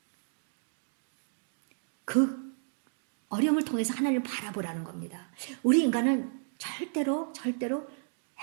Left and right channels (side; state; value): left; silent; digital silence